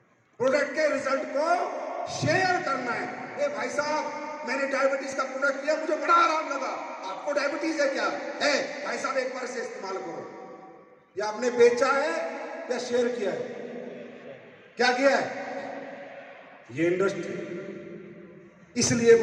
प्रोडक्ट के रिजल्ट को शेयर करना है। ए भाई साहब, मैंने डायबिटीज का प्रोडक्ट लिया, मुझे बड़ा आराम लगा, आपको डायबिटीज है क्या? है भाई साहब, एक बार से इस्तेमाल करो। या आपने बेचा है या शेयर किया है? क्या किया है? ये इंडस्ट्री इसलिए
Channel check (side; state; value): both; identical; correlation 1.00